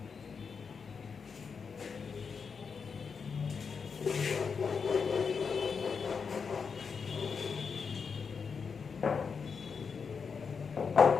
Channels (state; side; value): quieter; right; 5.7 dB